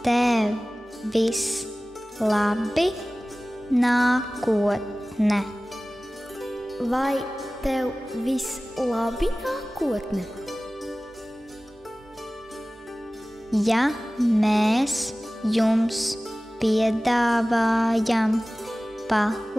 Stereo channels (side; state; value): both; normal; correlation 0.98